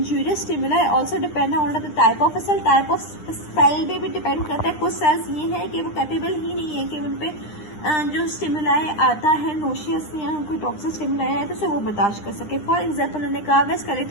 stimuli also depend on the type of cell. Type of cell पे भी डिपेंड करता है। कुछ सेल्स ये है कि वो कैपेबल ही नहीं है कि उन पे जो स्टिमुलाई आता है नोशियस या कोई टॉक्सिक स्टिमुलाई है तो उसे वो बर्दाश्त कर सके। फॉर एग्जाम्पल उन्होंने कहा वे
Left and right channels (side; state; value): right; late; 9.8 ms